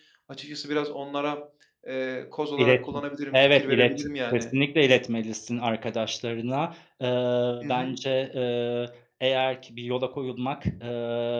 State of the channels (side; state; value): both; identical; correlation 1.00